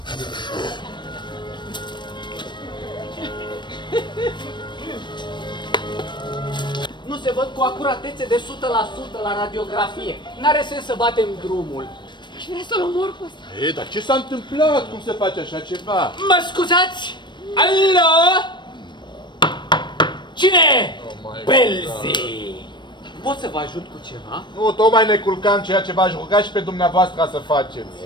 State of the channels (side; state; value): right; late; 0.22 ms